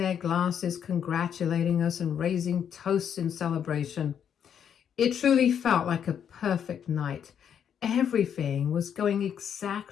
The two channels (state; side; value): quieter; right; 8.4 dB